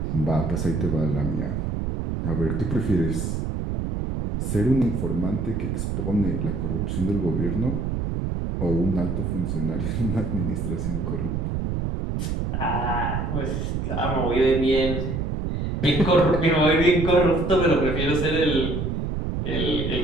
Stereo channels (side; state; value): right; noise; rumble, 2 dB below the sound